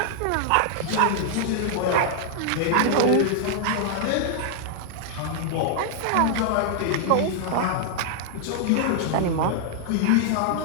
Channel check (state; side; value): different; both; correlation -0.01